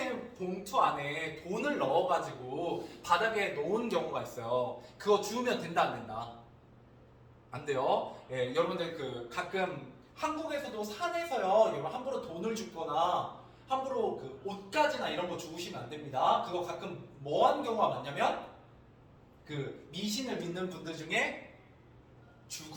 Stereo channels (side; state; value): both; identical; correlation 1.00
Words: 봉투 안에 돈을 넣어가지고 바닥에 놓은 경우가 있어요. 그거 주우면 된다 안 된다? 안 돼요. 여러분들 그 가끔 한국에서도 산에서요. 여러분 함부로 돈을 줍거나 함부로 그 옷가지나 이런 거 주우시면 안 됩니다. 그거 가끔 뭐한 경우가 많냐면 그 미신을 믿는 분들 중에